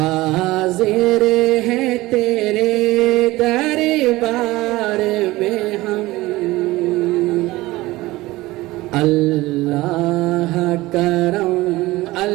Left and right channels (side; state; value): left; quieter; 19.0 dB